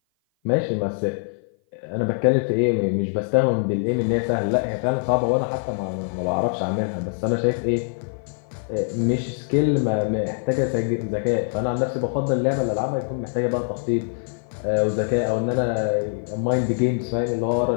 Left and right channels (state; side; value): silent; right; 56 dB below the other